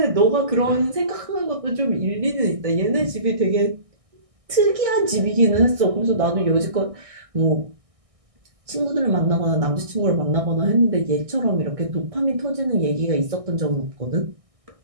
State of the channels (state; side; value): late; left; 1.6 ms